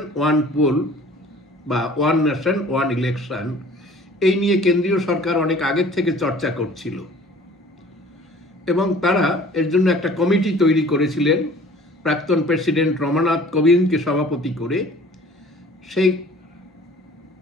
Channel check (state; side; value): normal; both; correlation 0.49